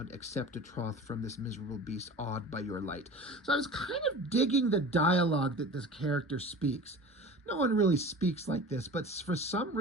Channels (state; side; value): normal; both; correlation 0.37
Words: accept a troth from this miserable beast, awed by your light. So I was kind of digging the dialogue that this character speaks. No one really speaks like this, but for some